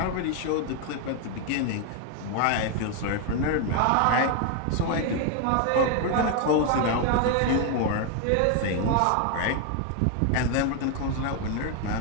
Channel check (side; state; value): both; different; correlation 0.01